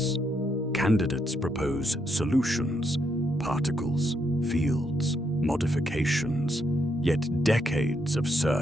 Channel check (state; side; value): normal; both; correlation 0.77